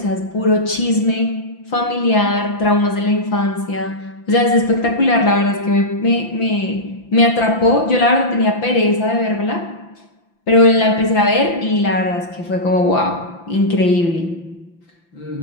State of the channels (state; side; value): late; right; 5.9 ms